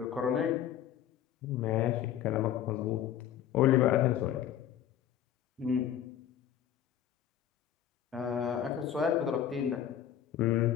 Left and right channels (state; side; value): quieter; right; 10.3 dB